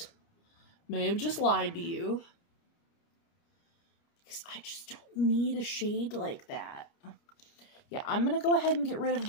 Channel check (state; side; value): late; right; 29 ms